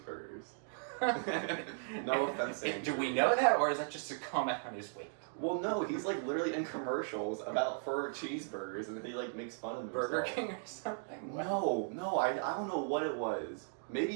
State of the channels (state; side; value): silent; left; digital silence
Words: No offense, Andrew. Do we know that, or is that just a comment on his weight? Well, no, he's like literally in commercials for cheeseburgers, and he like makes fun of himself. Burger King or something? No, I don't know what it was.